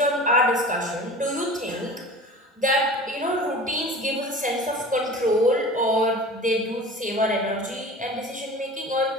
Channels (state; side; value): normal; both; correlation 0.38